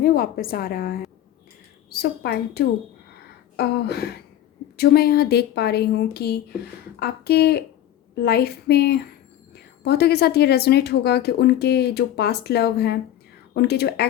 वापस आ रहा है। सो पाइल 2, जो मैं यहाँ देख पा रही हूँ कि आपके लाइफ में बहुतों के साथ ये रेजोनेट होगा कि उनके जो पास्ट लव हैं, उनके जो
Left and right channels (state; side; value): quieter; right; 12.1 dB